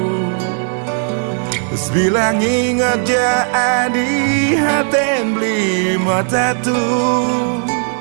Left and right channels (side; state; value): left; silent; 55 dB below the other